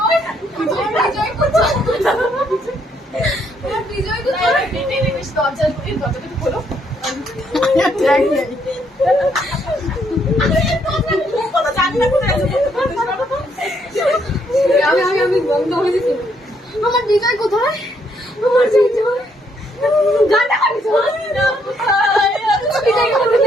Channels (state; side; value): normal; both; correlation 0.72